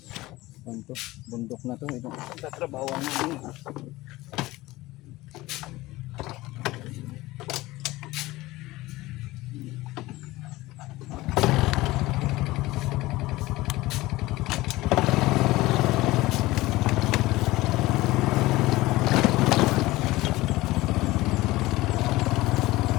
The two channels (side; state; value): right; quieter; 18.9 dB